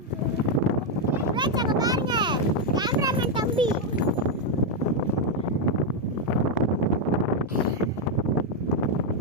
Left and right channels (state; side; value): normal; both; correlation 0.02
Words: फ्रेंड्स அங்க பாருங்க கேமராமேன் தம்பி.